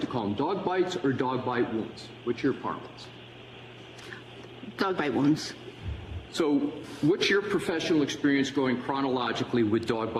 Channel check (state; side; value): identical; both; correlation 1.00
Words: to call them? Dog bites or dog bite wounds? What's your parlance? Dog bite wounds. So what's your professional experience going chronologically with dog